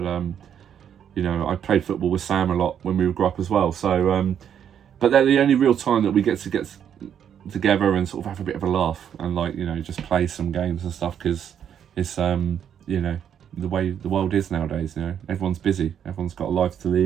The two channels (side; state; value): left; quieter; 8.9 dB